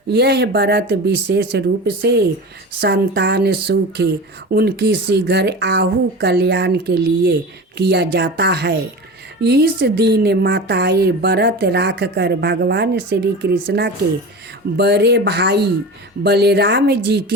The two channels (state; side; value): normal; both; correlation 0.31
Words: यह व्रत विशेष रूप से संतान सुख उनकी शीघ्र आहु कल्याण के लिए किया जाता है। इस दिन माताएं व्रत रख कर भगवान श्री कृष्ण के बड़े भाई बलराम जी